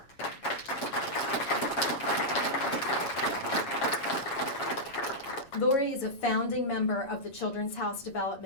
Lori is a founding member of the Children's House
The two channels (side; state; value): right; late; 7.3 ms